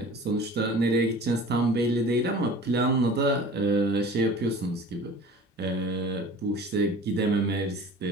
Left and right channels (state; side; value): normal; both; correlation 0.42